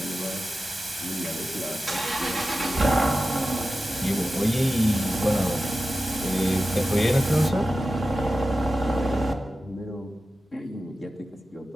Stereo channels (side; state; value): both; normal; correlation 0.94